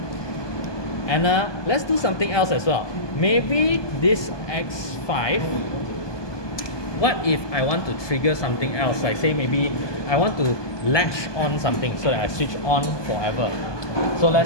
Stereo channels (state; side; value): late; right; 1.2 ms